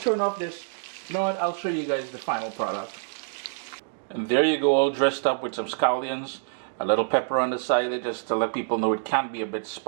off this. You know what, I'll show you guys the final product. And there you go, all dressed up with some scallions, a little pepper on the side just to let people know it can be a bit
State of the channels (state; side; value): silent; left; digital silence